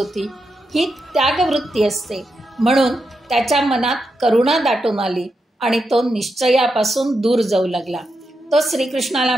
ही त्यागवृत्ती असते. म्हणून त्याच्या मनात करुणा दाटून आली आणि तो निश्चयापासून दूर जाऊ लागला. तो श्रीकृष्णाला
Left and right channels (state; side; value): normal; both; correlation 0.86